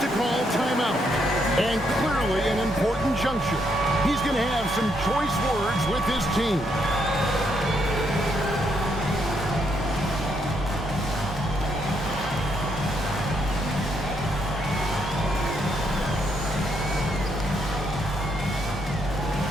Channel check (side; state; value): both; normal; correlation 0.76